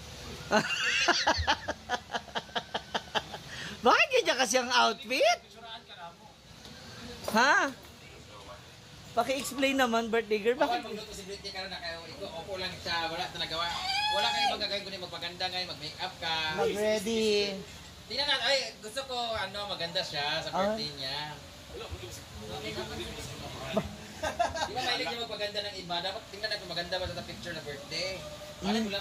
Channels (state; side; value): identical; both; correlation 1.00